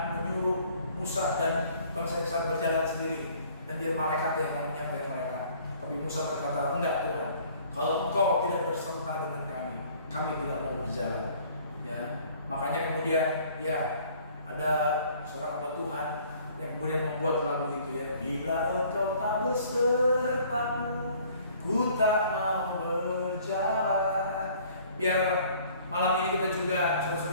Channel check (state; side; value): inverted; both; correlation -0.55